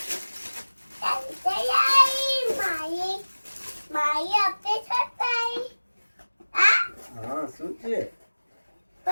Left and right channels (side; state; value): both; inverted; correlation -1.00